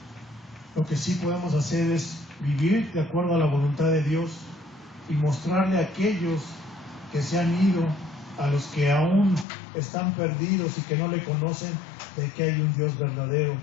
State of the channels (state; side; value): drops out; right; at 9.5 s